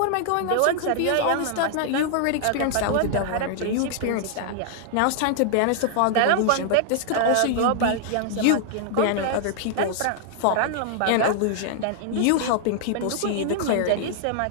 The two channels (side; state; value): both; different; correlation -0.01